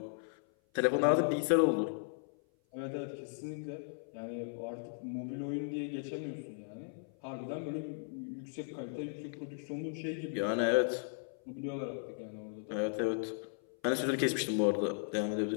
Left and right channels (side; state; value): right; silent; 54 dB below the other